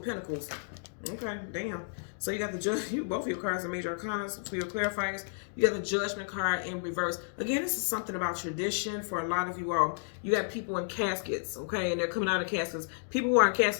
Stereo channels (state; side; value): silent; right; digital silence